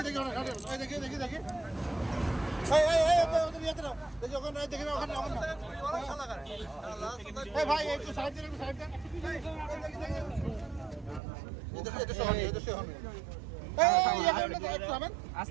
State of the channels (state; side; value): drops out; left; at 11.2 s